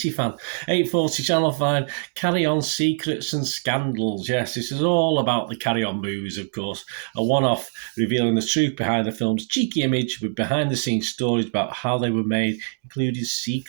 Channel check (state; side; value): silent; left; digital silence